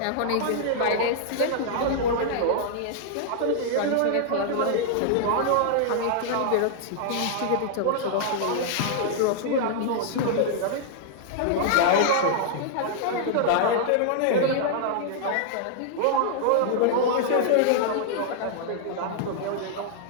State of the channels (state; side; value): different; both; correlation -0.01